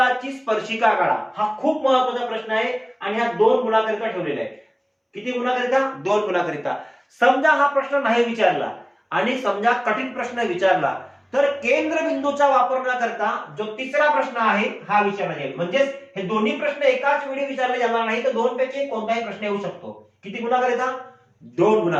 स्पर्शिका काढा, हा खूप महत्वाचा प्रश्न आहे आणि हा 2 गुणाकरिता ठेवलेला आहे. किती गुणाकरिता? 2 गुणाकरिता. समजा हा प्रश्न नाही विचारला आणि समजा कठीण प्रश्न विचारला तर केंद्रबिंदूचा वापर न करता जो तिसरा प्रश्न आहे हा विचारला जाईल. म्हणजेच हे दोन्ही प्रश्न एकाच वेळी विचारले जाणार नाही, तर 2 पैकी कोणताही प्रश्न येऊ शकतो. किती गुणाकरिता? 2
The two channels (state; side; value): identical; both; correlation 1.00